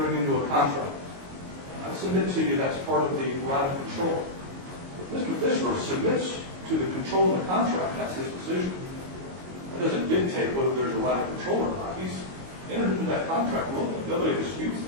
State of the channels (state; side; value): late; left; 22 ms